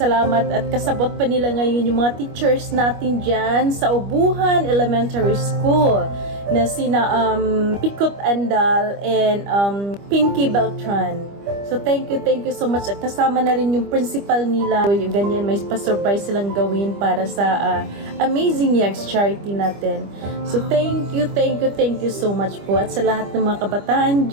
at kasabot pa nila ngayon yung mga teachers natin dyan sa Ubuhan Elementary School na sina Pikot Andal and Pinky Beltran. So thank you so much. At kasama na rin yung principal nila. So, yung ganyan, may pa-surprise silang gawin para sa Amazing Eggs charity natin. So thank you so much po. At sa lahat ng mga kabataan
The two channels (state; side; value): late; left; 25 ms